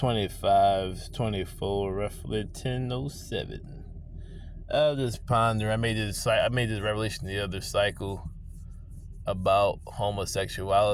roughly 10:07. I was just pondering. I made this revelation the other cycle about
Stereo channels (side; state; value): both; identical; correlation 1.00